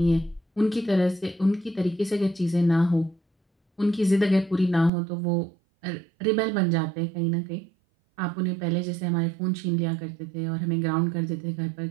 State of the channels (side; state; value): left; drops out; at 4.9 s